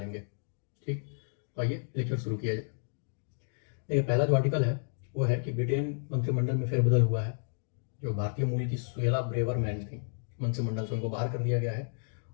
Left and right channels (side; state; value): right; silent; digital silence